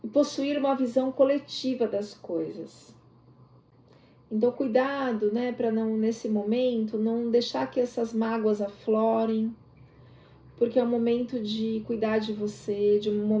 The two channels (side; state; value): both; identical; correlation 1.00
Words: E possuir uma visão coletiva das coisas. Então, cuidado, né, para não, nesse momento, não deixar que essas mágoas aflorem, porque é um momento de cuidar de você, de um